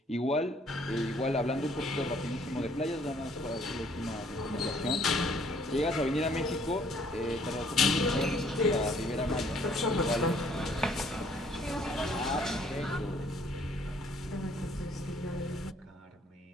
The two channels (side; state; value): both; normal; correlation 0.62